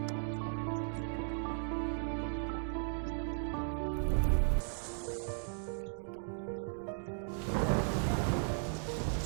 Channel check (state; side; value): silent; left; digital silence